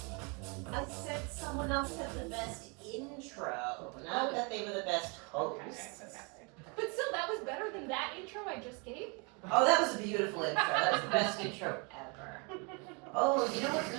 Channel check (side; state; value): left; quieter; 32.2 dB